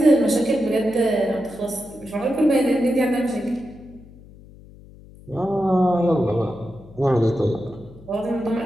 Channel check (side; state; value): left; noise; hum, 21 dB below the sound